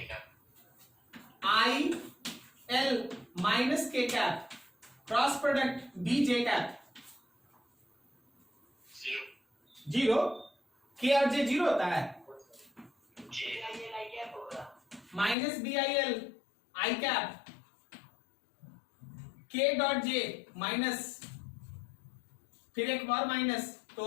cap. I L minus K cap cross product B J cap. 0. Zero, K और जे जीरो होता है। J. I cap होगा. Minus B I L I cap, K dot J minus, फिर एक और माइनस,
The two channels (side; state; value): right; drops out; at 15.4 s